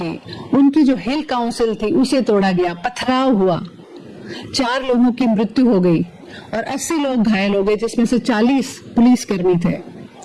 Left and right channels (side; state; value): both; identical; correlation 1.00